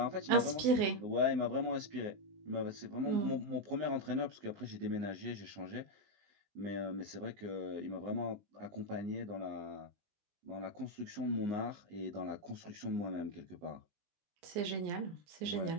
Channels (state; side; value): late; left; 19 ms